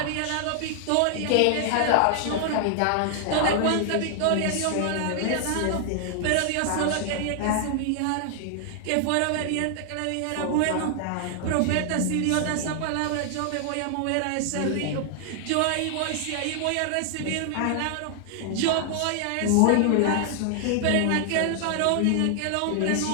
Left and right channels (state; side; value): different; both; correlation 0.00